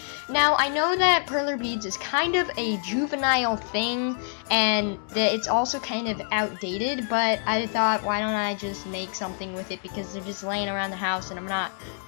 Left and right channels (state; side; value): silent; right; digital silence